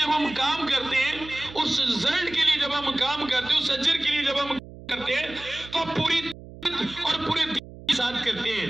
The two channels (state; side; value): noise; right; hum, 16 dB below the sound